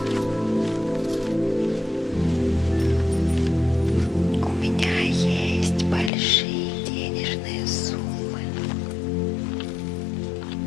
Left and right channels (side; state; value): right; drops out; at 6.1 s